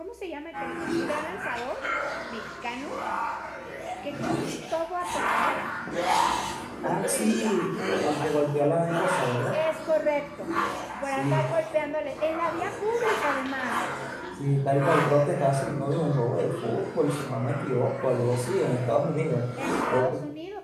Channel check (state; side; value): identical; both; correlation 1.00